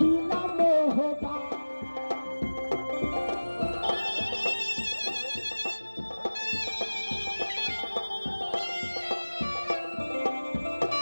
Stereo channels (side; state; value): both; inverted; correlation -1.00